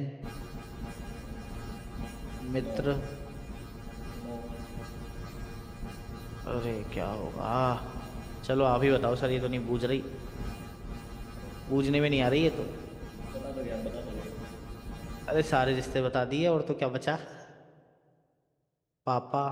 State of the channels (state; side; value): identical; both; correlation 1.00